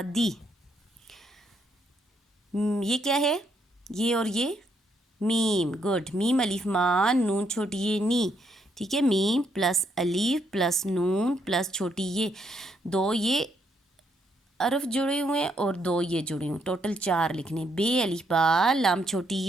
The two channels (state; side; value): normal; both; correlation 0.74